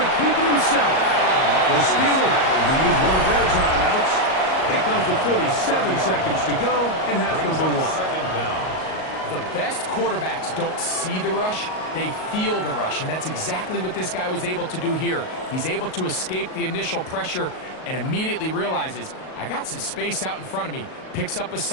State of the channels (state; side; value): late; right; 38 ms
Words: keep it himself. The Steelers will use one of their timeouts. It comes to 47 seconds to go in half number 1. The best quarterbacks don't see the rush, they feel the rush, and that's exactly what this guy was able to do here. He's able to escape the initial pressure and immediately realizes, I got some space out in front of me. Picks up a